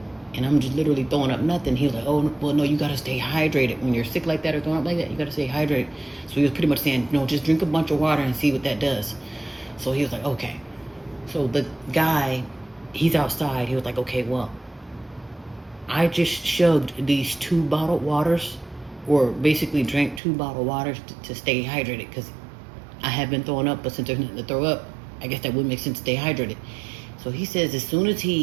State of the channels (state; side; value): drops out; left; at 20.2 s